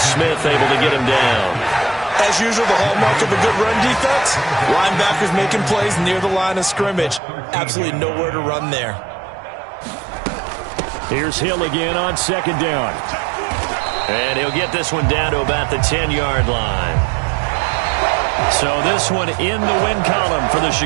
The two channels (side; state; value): left; drops out; at 7.2 s